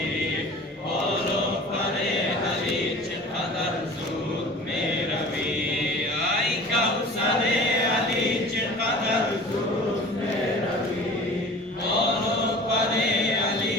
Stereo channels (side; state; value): both; normal; correlation 0.42